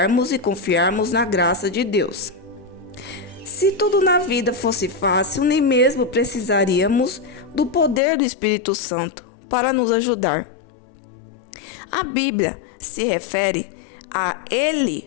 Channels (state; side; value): drops out; right; at 8.0 s